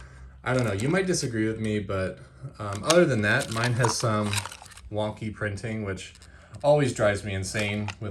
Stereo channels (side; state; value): both; identical; correlation 1.00